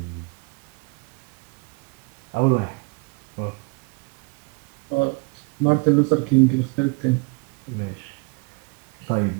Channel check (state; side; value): quieter; left; 31.7 dB